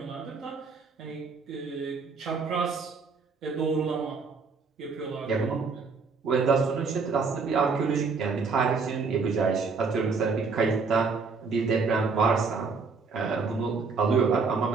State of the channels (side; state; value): left; quieter; 4.7 dB